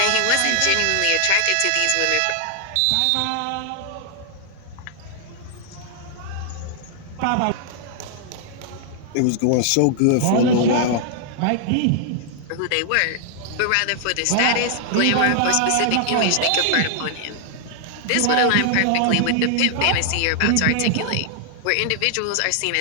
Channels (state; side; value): different; both; correlation 0.00